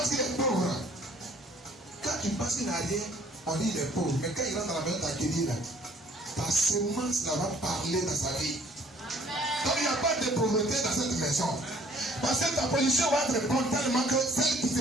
qu'il est pauvre. Quand tu penses qu'il n'a rien, on dit qu'il est pauvre. Mais quand il rentre dans la maison d'accueillir, ta semence là va parler dans sa vie. Donc il n'y a pas de pauvreté dans cette maison. Parce que ta position va être bonne tellement que celle qui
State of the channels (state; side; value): normal; both; correlation 0.58